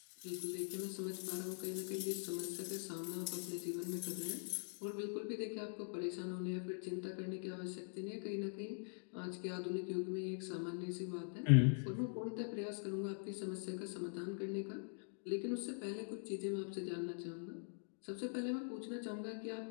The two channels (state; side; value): silent; right; digital silence